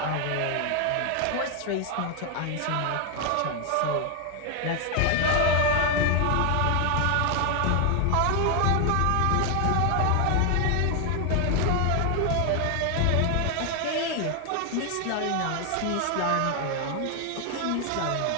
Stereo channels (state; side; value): different; both; correlation 0.00